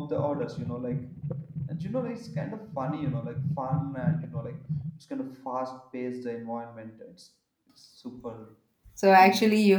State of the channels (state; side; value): identical; both; correlation 1.00